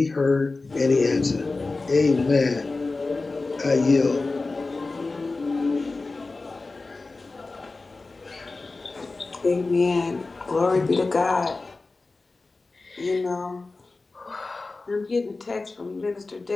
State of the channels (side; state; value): right; quieter; 3.5 dB